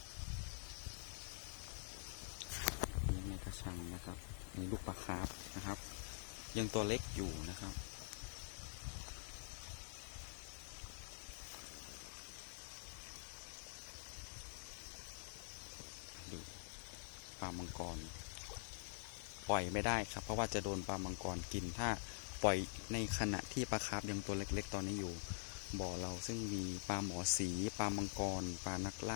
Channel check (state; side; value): silent; right; digital silence